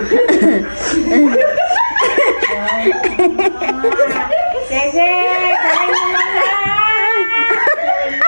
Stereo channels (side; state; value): both; inverted; correlation -1.00